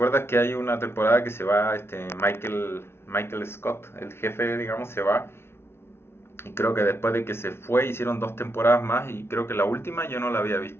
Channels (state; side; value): late; right; 0.12 ms